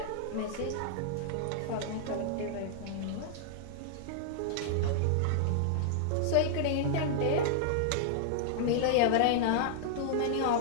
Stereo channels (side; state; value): both; different; correlation -0.01